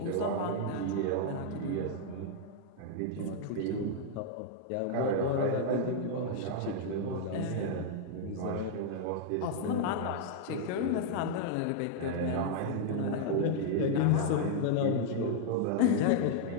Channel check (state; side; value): different; both; correlation -0.01